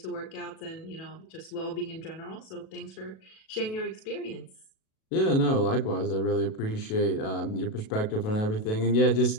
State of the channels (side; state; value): right; late; 37 ms